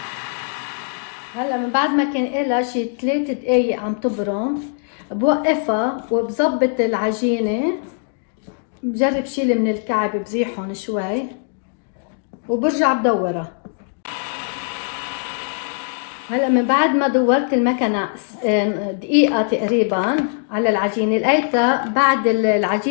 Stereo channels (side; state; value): right; silent; 63 dB below the other